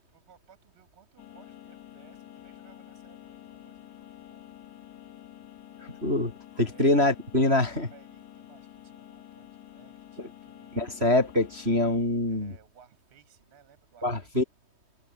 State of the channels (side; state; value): left; late; 3.0 ms